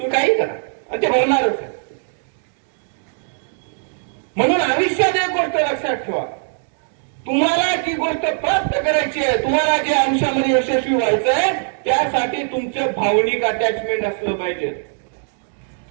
काही करा आणि ते होणारच आहे. म्हणून आयुष्यात एक गोष्ट लक्षात ठेवा, तुम्हाला जी गोष्ट प्राप्त करायची आहे, तुम्हाला जे आयुष्यामध्ये यशस्वी व्हायचं आहे, त्यासाठी तुमचं भावनिक अटॅचमेंट असलं पाहिजे.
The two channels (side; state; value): left; silent; 66 dB below the other